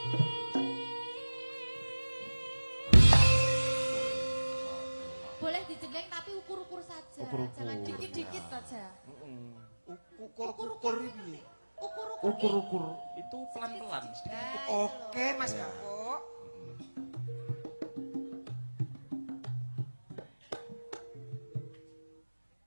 Boleh dijengleng tapi ukur-ukur saja. Jangan dikit-dikit saja. Ukur-ukur piye? Ukur-ukur itu pelan-pelan sedikit. Oke, Mas Gabok.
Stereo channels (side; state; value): both; inverted; correlation -1.00